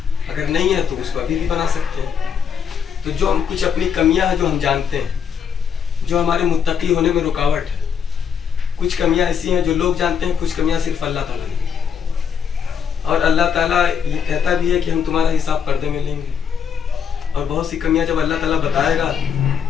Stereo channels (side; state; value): right; quieter; 7.1 dB